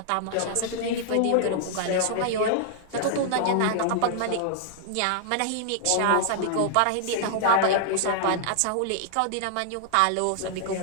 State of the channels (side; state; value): both; different; correlation 0.00